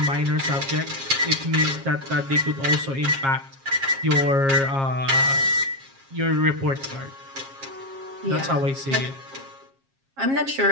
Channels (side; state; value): left; late; 7.4 ms